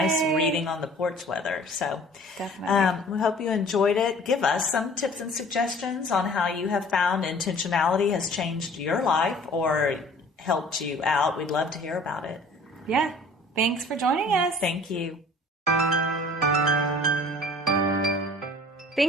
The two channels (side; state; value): both; normal; correlation 0.49